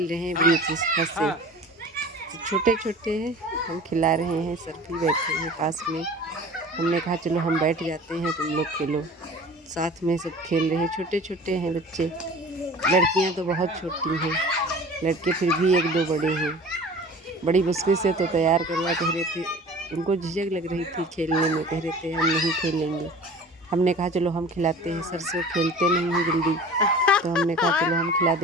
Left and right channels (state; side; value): normal; both; correlation 0.41